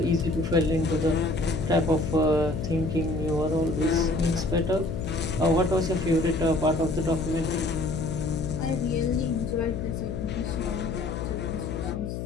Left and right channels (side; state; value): left; noise; hum, 5 dB below the sound